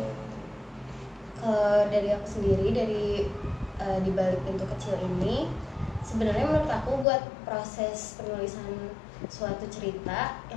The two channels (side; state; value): right; drops out; at 7.1 s